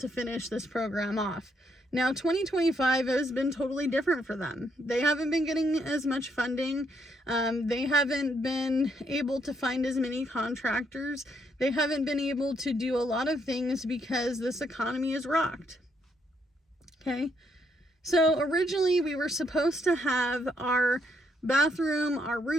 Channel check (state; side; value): normal; both; correlation 0.74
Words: finish this program off. Now, 2025 has been totally different for them. They haven't been getting as much funding. They haven't been able to find as many contractors. They haven't been able to do a lot of things because this economy is rocked. Okay? So originally we were supposed to have our bathroom, our